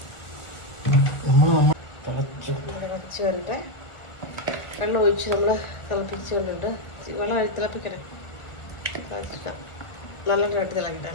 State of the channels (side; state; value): right; late; 1.4 ms